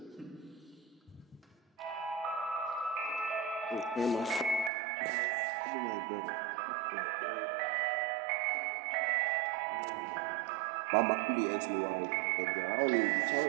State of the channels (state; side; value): drops out; left; at 4.7 s